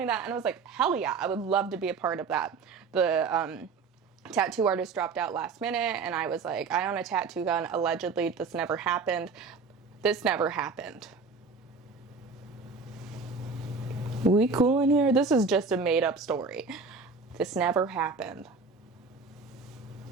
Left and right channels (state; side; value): quieter; left; 4.6 dB